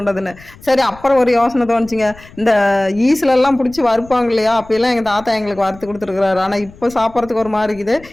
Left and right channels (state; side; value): noise; left; rumble, 22 dB below the sound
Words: சரி அப்புறம் ஒரு யோசனை தோணுச்சுங்க, இந்த ஈஸ்லெல்லாம் பிடிச்சி வறுப்பாங்க இல்லையா, அப்பெல்லாம் எங்கள் தாத்தா எங்களுக்கு வறுத்து கொடுத்துருக்குறாரு. ஆனால் இப்போ சாப்பிட்றதுக்கு ஒரு மாதிரி இருக்குது.